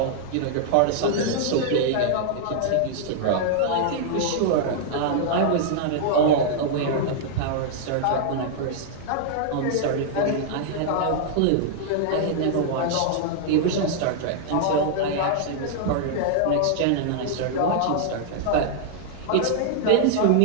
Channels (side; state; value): both; different; correlation -0.01